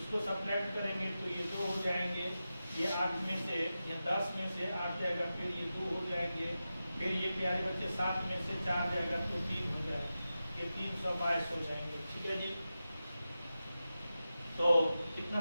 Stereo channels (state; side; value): inverted; both; correlation -0.93